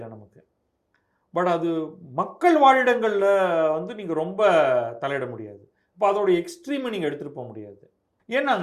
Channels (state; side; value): identical; both; correlation 1.00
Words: நமக்கு. பட் அது மக்கள் வாழிடங்களில் வந்து நீங்கள் ரொம்ப தலையிட முடியாது. இப்போ அதோடைய எக்ஸ்ட்ரீமை நீங்கள் எடுத்துகிட்டு போக முடியாது.